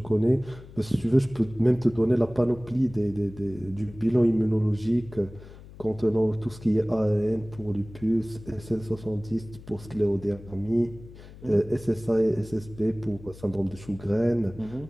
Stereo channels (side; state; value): left; noise; hum, 18 dB below the sound